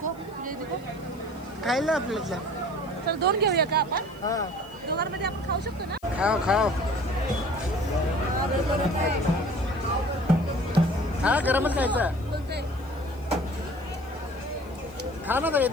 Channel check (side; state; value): left; noise; hiss, 27 dB below the sound